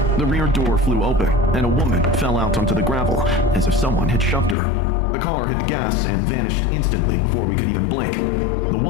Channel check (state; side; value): drops out; right; at 4.5 s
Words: the rear door flew open, and a woman fell out onto the gravel as if someone had shoved her. The car hit the gas and vanished instantly before we could even blink. The